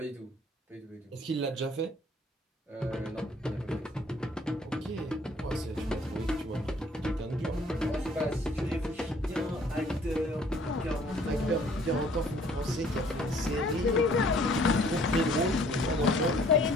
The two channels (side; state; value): both; normal; correlation 0.58